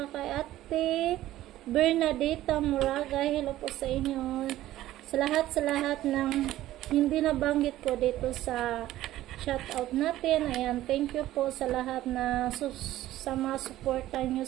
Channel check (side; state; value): left; quieter; 14.6 dB